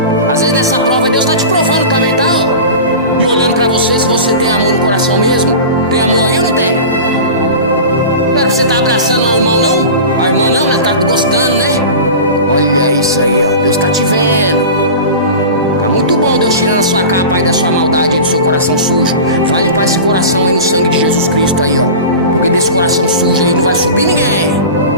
Às vezes nessa prova Deus está te provando também, tá? E olhando pra você, se você tem amor no coração mesmo. Tem amor aí ou não tem? Não era pra você estar abraçando o irmão, não? A irmã não, né? Tá gostando, né? Olha isso aí, ó. Deus tá te vendo. Tá muito bom Deus tirando a sua capa aí da sua maldade aí, do seu coração sujo. Vai limpar esse coração aí no sangue de Jesus Cristo aí, ó. Porque desse coração sujo aí não vai subir ninguém.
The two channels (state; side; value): inverted; both; correlation -0.32